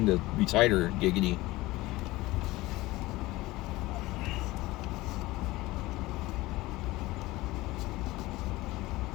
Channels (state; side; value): quieter; right; 19.3 dB